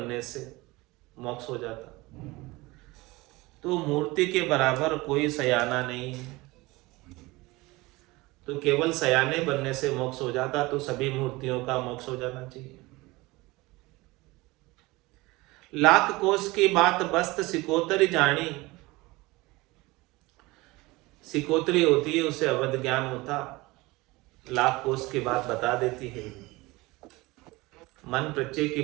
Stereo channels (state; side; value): quieter; left; 21.7 dB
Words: से मोक्ष हो जाता। तो मूर्ति के बराबर कोई सयाना नहीं है, तो केवल सयाने बनने से मोक्ष हो जाता तो सभी मूर्तियों का मोक्ष हो जाना चाहिए। लाख कोष की बात बस्त सिकोतरी जानी। सिकोतरी होती है, उसे अवध ज्ञान होता, लाख कोष की बात बता देती है, मन प्रत्यय की